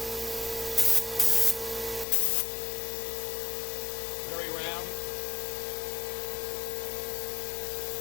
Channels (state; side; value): drops out; right; at 2.1 s